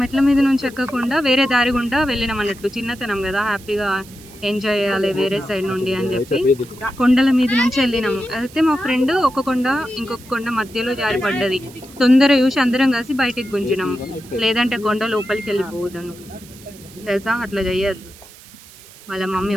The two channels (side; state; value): right; noise; hiss, 21 dB below the sound